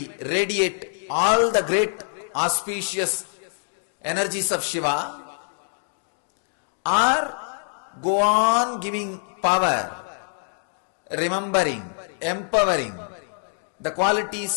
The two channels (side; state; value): right; silent; digital silence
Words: radiate all the great auspicious energies of Shiva, or go on giving power, remembering, empowering the